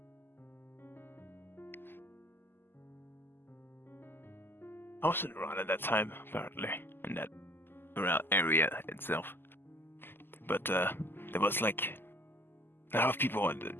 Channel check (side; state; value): right; late; 0.099 ms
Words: I wasn't around at that time, apparently, in that around area itself. But there was like a lot of people,